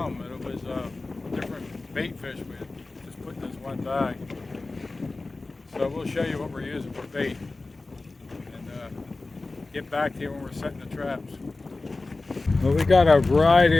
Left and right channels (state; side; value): quieter; right; 3.3 dB